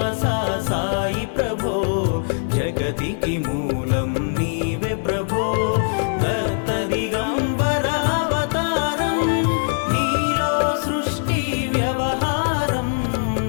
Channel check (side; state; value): right; silent; digital silence